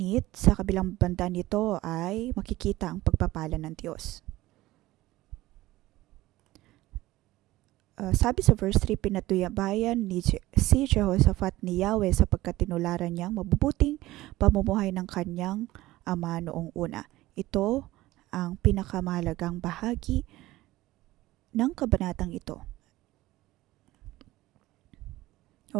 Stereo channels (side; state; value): left; quieter; 17.4 dB